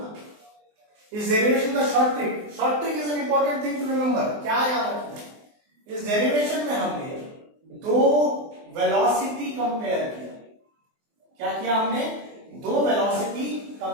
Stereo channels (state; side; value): late; left; 24 ms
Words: इस डेरिवेशन का short trick is an important thing to remember. क्या याद रखना है, इस डेरिवेशन में हमने दो वेलोसिटी कंपेयर किया। क्या किया हमने, दो वेलोसिटी